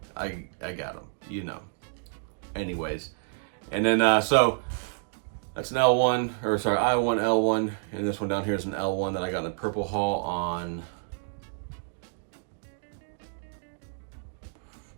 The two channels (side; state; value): left; silent; digital silence